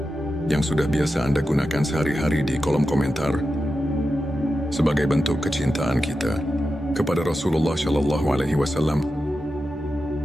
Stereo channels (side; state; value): both; normal; correlation 0.90